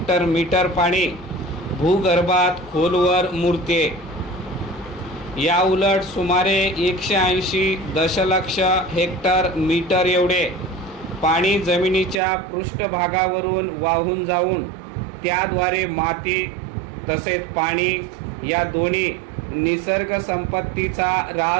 मीटर पाणी भूगर्भात खोलवर मुरते. या उलट सुमारे 180 दशलक्ष हेक्टर मीटर एवढे पाणी जमिनीच्या पृष्ठभागावरून वाहून जाऊन त्याद्वारे माती तसेच पाणी या दोन्ही निसर्ग संपत्तीचा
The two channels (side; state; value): left; drops out; at 12.2 s